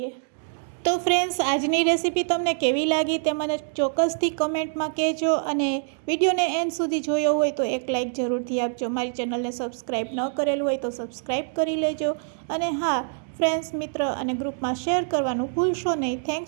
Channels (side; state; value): left; silent; digital silence